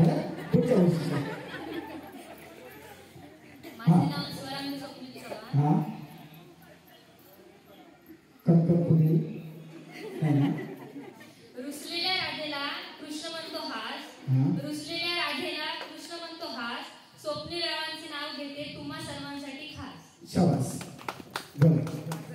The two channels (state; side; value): identical; both; correlation 1.00